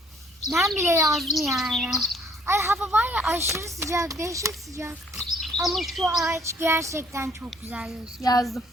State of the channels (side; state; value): both; normal; correlation 0.61